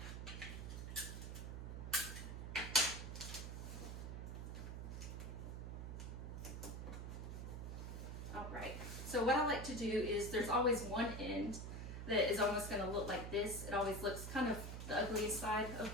Alright, so what I like to do is there's always one end that is almost going to look like this. It always looks kind of the ugliest side of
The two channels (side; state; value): right; noise; hum, 6 dB below the sound